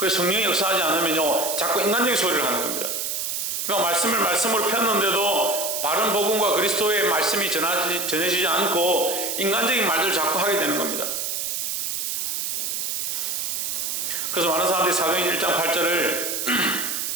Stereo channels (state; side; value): noise; right; hiss, 2 dB below the sound